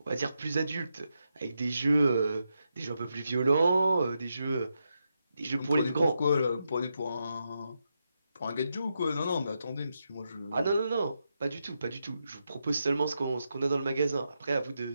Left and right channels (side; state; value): both; inverted; correlation -0.84